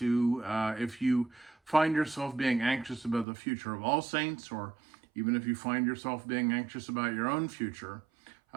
if you find yourself being anxious about the future of All Saints, or even if you find yourself being anxious about your own future,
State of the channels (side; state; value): left; drops out; at 3.2 s